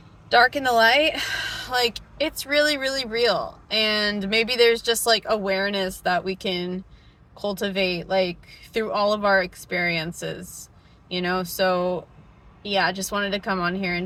dark and the light, like it's really, really real. And maybe there's just like awareness that we can cultivate like through all of our experiences, you know? So yeah, I just wanted to come on here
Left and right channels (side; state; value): both; identical; correlation 1.00